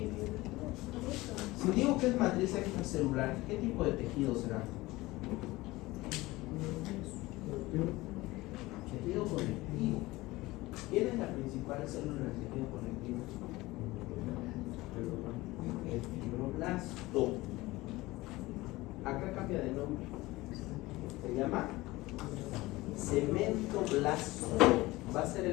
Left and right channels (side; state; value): right; quieter; 19.8 dB